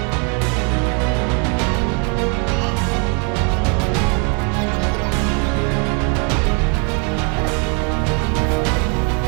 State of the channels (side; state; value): left; quieter; 36.6 dB